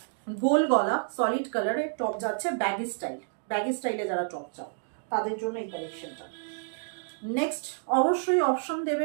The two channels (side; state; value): left; silent; digital silence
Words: গোল গলা সলিড কালারের টপ যাচ্ছে, ব্যাগি স্টাইল, ব্যাগি স্টাইলে যারা টপ চাও তাদের জন্য এই কালেকশনটা। নেক্সট অবশ্যই অপশন দেবে